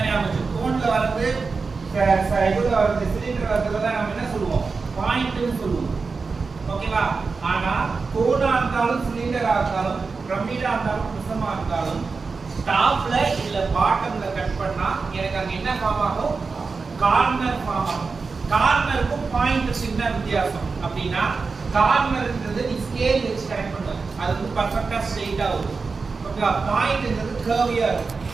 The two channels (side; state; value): left; quieter; 4.5 dB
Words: ஞாபகம். கோன்ல வந்து இதுல வந்து சிலிண்டர் வரதுல தான் நம்ம என்ன சொல்லுவோம், பாயிண்ட்னு சொல்லுவோம். ஓகேவா? ஆனா கோனா இருந்தாலும் சிலிண்டரா இருந்தாலும் பிரமிடா இருந்தாலும் பிரிசமா இருந்தாலும் டாப்ல இல்ல பாட்டம்ல கட் பண்ணா எனக்கு அங்க என்ன ஃபார்ம் ஆகும், கார்னர் ஃபார்ம் ஆகும். கார்னருக்கும் பாயிண்ட்க்கு என்ன வித்தியாசம் அப்படினா கார்னர்ன்றது நீ ஸ்கேல் வச்சு கனெக்ட் பண்ணுவ, அது வந்து பெர்ஃபெக்ட்டா ஸ்ட்ரைட்டா வரும். ஓகேவா? பாயிண்ட்ன்றது கர்வியா இருக்கும்.